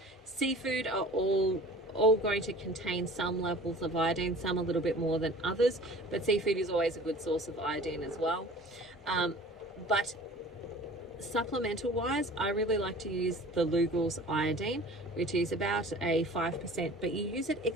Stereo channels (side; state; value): both; normal; correlation 0.44